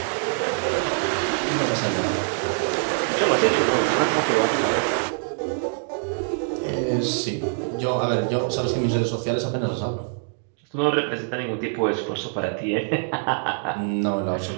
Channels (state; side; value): silent; left; 61 dB below the other